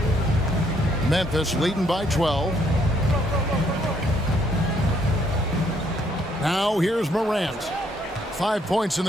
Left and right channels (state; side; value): normal; both; correlation 0.69